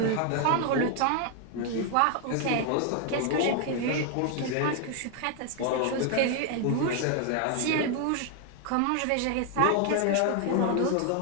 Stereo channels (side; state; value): both; different; correlation 0.00